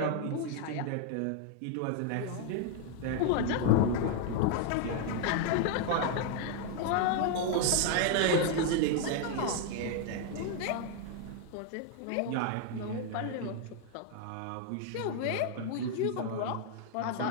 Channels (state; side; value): different; both; correlation 0.00